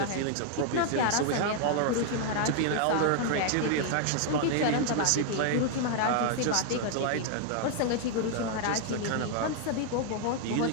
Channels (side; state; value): both; different; correlation 0.00